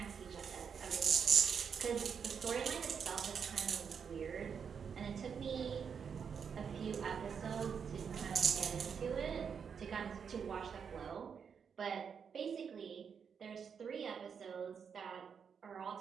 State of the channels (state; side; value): quieter; left; 6.8 dB